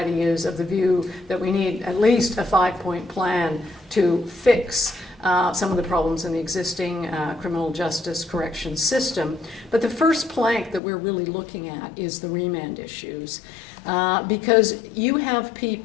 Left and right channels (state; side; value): drops out; right; at 10.8 s